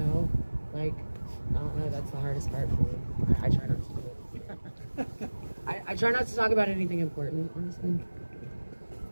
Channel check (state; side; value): inverted; both; correlation -1.00